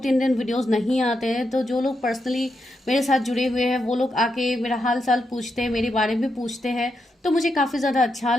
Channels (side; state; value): both; normal; correlation 0.84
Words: दिन वीडियोस नहीं आते हैं तो जो लोग पर्सनली मेरे साथ जुड़े हुए हैं वो लोग आके मेरा हाल चाल पूछते हैं, मेरे बारे में पूछते हैं, तो मुझे काफ़ी ज़्यादा अच्छा